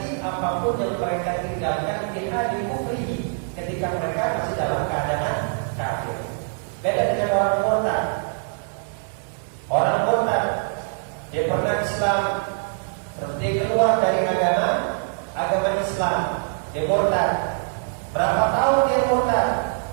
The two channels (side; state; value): left; silent; digital silence